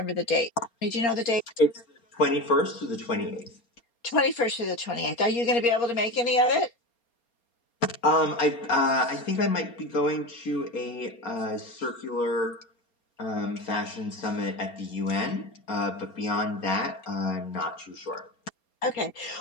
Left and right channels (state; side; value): late; right; 4.3 ms